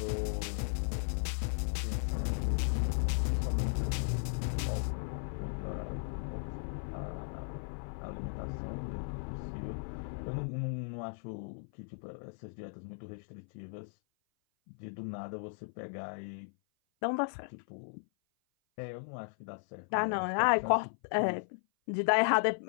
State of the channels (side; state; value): right; silent; 54 dB below the other